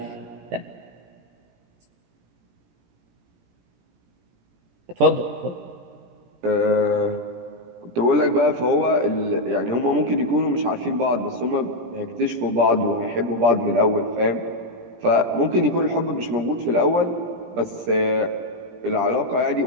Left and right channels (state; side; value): late; left; 17 ms